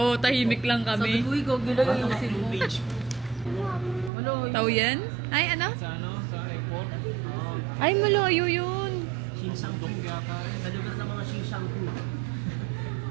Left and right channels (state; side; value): drops out; left; at 4.1 s